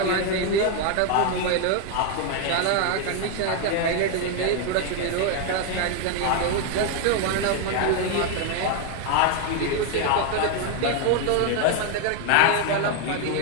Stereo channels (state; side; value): different; both; correlation 0.01